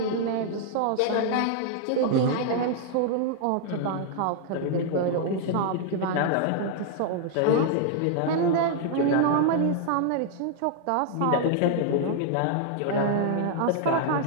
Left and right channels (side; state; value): both; different; correlation 0.00